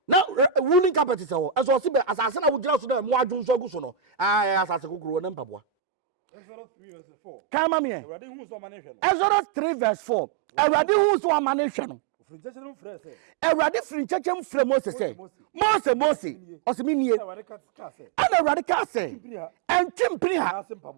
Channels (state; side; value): drops out; left; at 5.6 s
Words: na woolen carpet se ho eso se be asase na wodira so na mu adwu so agu so no asase gogoro na mpabwa. Exodus 3 verse 4 kama me Exodus 3 verse 4 Awurade hu so amane hwe no Awurade firi nkyekye mfrɛ Moses sɛ Mose ɔsɛminie ana Awurade ka sɛ ɛntwempiri ha